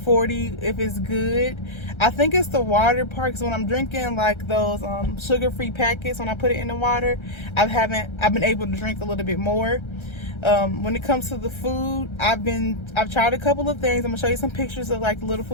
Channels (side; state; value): right; late; 1.3 ms